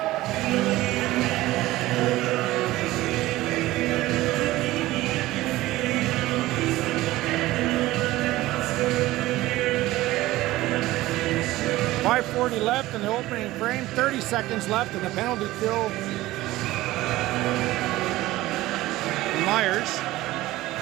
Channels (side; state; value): left; quieter; 17.3 dB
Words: .540 left in the opening frame. 30 seconds left in the penalty kill. Myers.